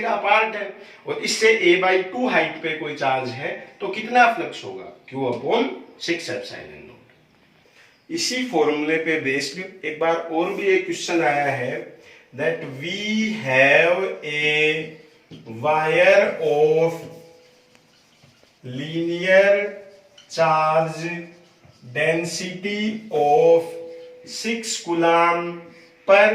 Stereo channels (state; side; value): identical; both; correlation 1.00